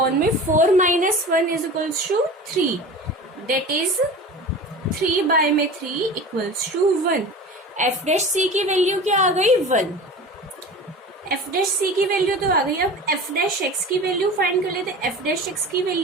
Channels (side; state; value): both; normal; correlation 0.35